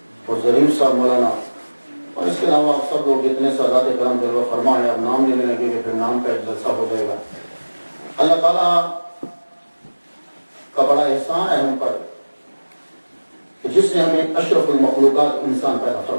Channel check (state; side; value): inverted; both; correlation -1.00